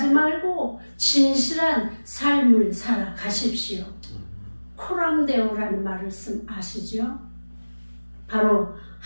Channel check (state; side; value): inverted; both; correlation -1.00